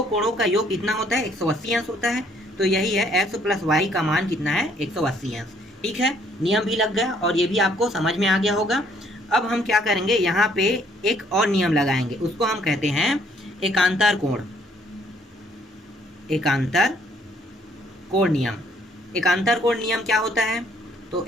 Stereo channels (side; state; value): both; normal; correlation 0.65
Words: कोणों का योग कितना होता है? 180 अंश होता है। तो यही है x प्लस वाई का मान कितना है? 180 अंश। ठीक है, नियम भी लग गया और ये भी आपको समझ में आ गया होगा। अब हम क्या करेंगे, यहाँ पे एक और नियम लगाएंगे, उसको हम कहते हैं एकांतर कोण नियम। एकांतर कोण नियम क्या होता है? तो